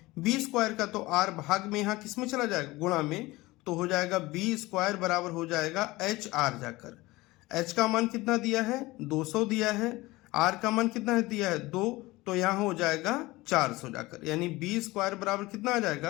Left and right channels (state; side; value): quieter; right; 20.2 dB